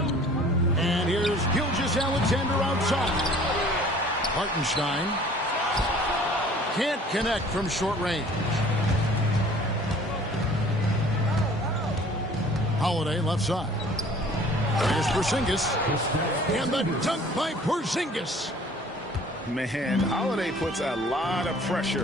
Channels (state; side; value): normal; both; correlation 0.51